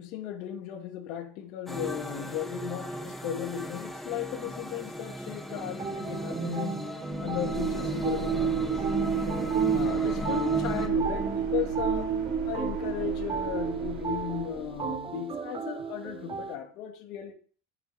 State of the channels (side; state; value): both; normal; correlation 0.32